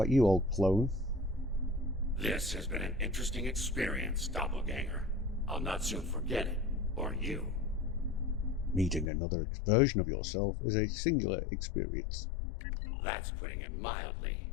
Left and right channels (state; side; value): drops out; right; at 9.1 s